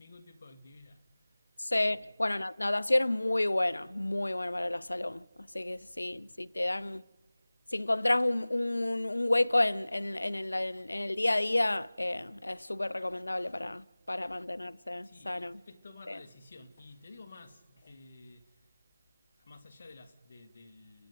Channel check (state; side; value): inverted; both; correlation -1.00